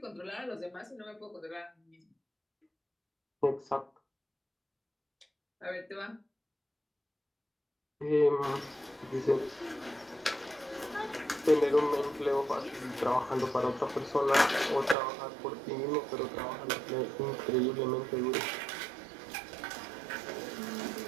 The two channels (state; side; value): drops out; left; at 15.0 s